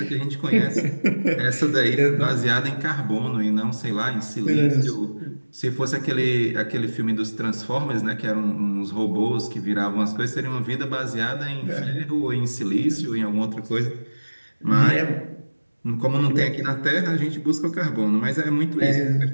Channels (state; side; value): inverted; both; correlation -1.00